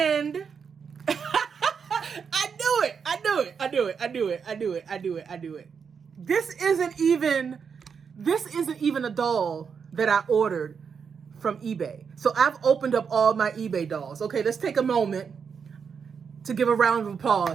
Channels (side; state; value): left; quieter; 6.4 dB